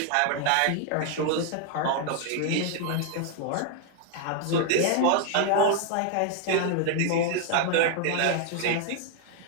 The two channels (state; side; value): different; both; correlation 0.00